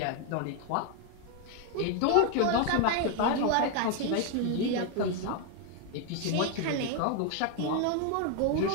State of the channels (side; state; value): both; different; correlation 0.01